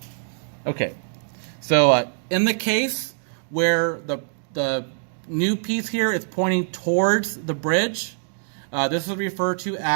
Okay, so in the case where the new piece here is pointing towards the bridge, this is referred to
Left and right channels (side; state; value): left; silent; digital silence